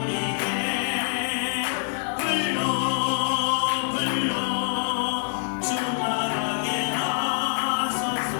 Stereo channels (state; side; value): silent; right; 56 dB below the other